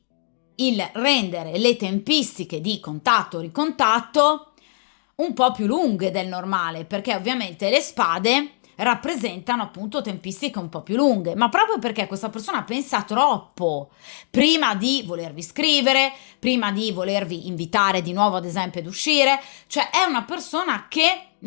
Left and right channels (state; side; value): silent; right; digital silence